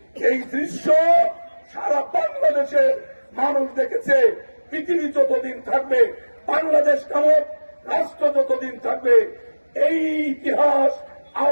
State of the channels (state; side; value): inverted; both; correlation -1.00